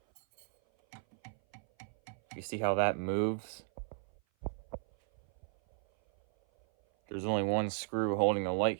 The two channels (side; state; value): left; silent; 54 dB below the other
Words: you see how that moves? There's only one screw holding the